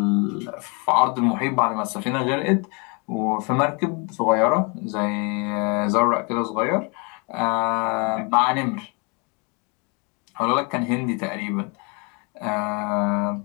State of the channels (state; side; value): quieter; right; 32.4 dB